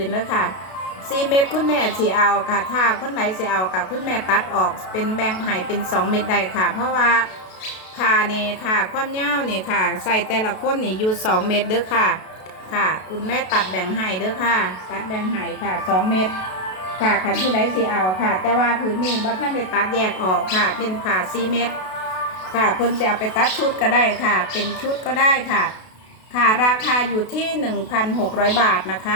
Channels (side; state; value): right; late; 32 ms